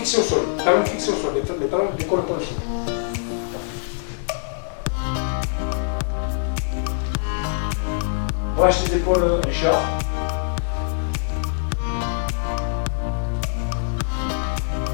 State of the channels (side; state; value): right; silent; digital silence